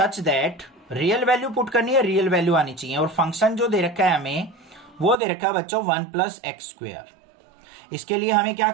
that, real value put करनी है, रियल वैल्यू आनी चाहिए। और फंक्शन जो दे रखा है हमें, वो दे रखा है बच्चों 1 + x²। इसके लिए हमें क्या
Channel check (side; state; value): left; drops out; at 5.2 s